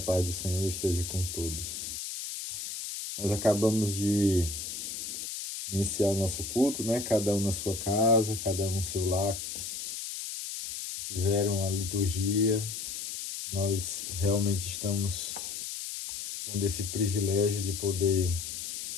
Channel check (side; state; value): left; noise; hiss, 6 dB below the sound